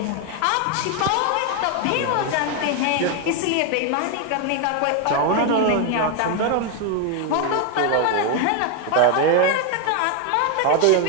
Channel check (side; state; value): both; different; correlation 0.01